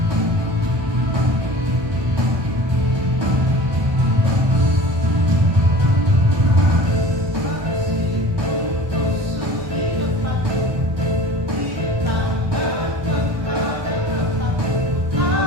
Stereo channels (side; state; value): left; late; 1.2 ms